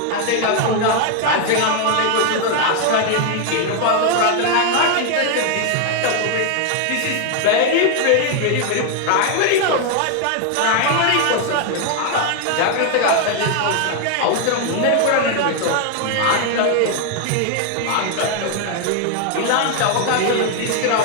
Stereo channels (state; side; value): different; both; correlation 0.01